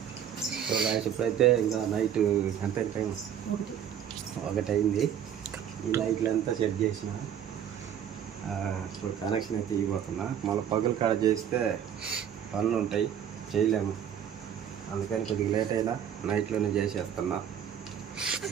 సో గాయస్ ఇప్పుడైతే ఇంకా నైట్ ఎంత టైం? 1 అయింది. ఈ లైట్లు అంతా సెట్ చేసిన ఇప్పుడు కనెక్షన్ అయితే ఇవ్వబోతున్నా. మళ్ళీ పగులు కాడ చేస్తే పనులు ఉంటాయి, చేయలేము. అందుకని కొద్దిగా లేట్ అయినా నైట్లోనే చేసేస్తున్నా.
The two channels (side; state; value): left; quieter; 9.2 dB